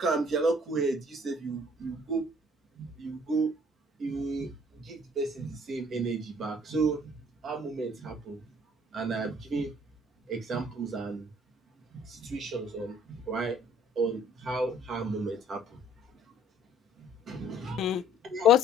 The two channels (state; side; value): normal; both; correlation 0.58